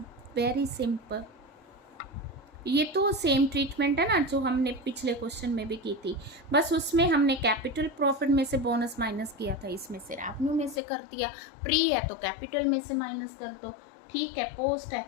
Very simple. ये तो सेम ट्रीटमेंट है ना जो हमने पिछले क्वेश्चन में भी की थी, बस उसमें हमने कैपिटल प्रॉफिट में से बोनस माइनस किया था, इसमें से रेवेन्यू में से कर दिया। प्री है तो कैपिटल में से माइनस कर दो, ठीक है, पोस्ट है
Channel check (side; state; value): right; drops out; at 10.8 s